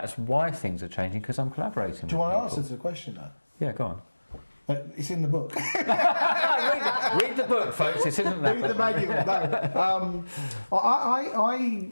why things are changing, because I'm collaborating. Do you want to answer to the question though? Yeah, go on. It's in the book. read the book, folks. This isn't that. Read the manual. No.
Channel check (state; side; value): inverted; both; correlation -1.00